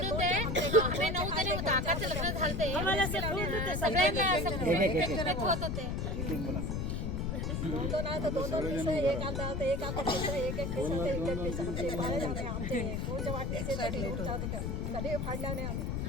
दे. आम्ही 9 जणी होतो. आकाचं लग्न झालते आम्हाला सगळ्यांना होत होते. 2 नाही तर 2 एक आता एक आता एक आमचे कोणच्या वाटणीचे कधी फाडल्या नाही आम्ही.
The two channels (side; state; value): left; noise; rumble, 1 dB below the sound